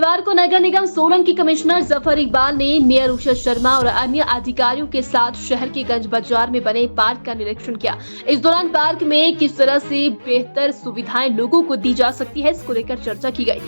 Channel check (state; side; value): inverted; both; correlation -1.00